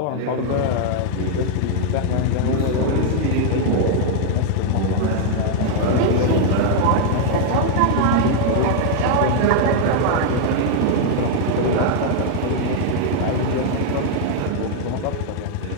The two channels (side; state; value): both; different; correlation 0.00